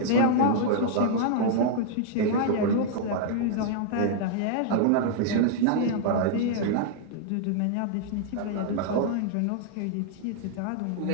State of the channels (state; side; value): different; both; correlation -0.01